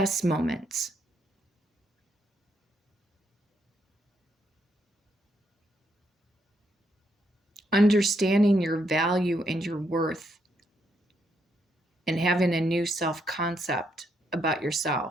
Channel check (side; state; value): both; normal; correlation 0.77